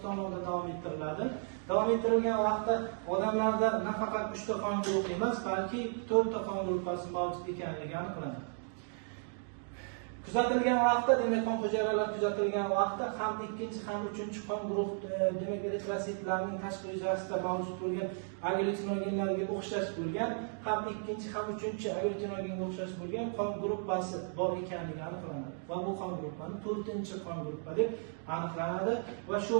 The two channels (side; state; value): left; silent; 55 dB below the other